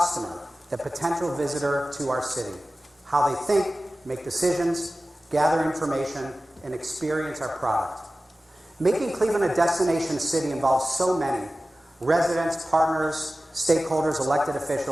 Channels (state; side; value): normal; both; correlation 0.96